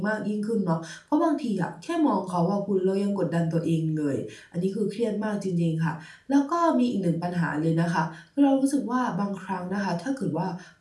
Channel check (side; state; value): both; identical; correlation 1.00